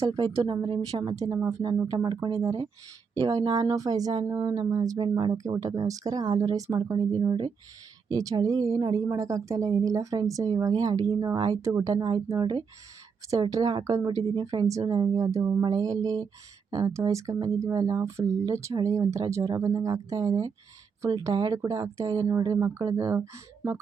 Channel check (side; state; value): left; quieter; 5.9 dB